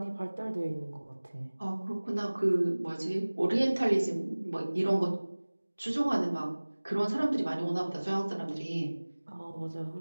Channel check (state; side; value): inverted; both; correlation -1.00